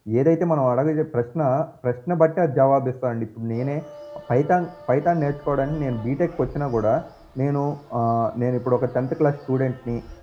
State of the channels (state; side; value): identical; both; correlation 1.00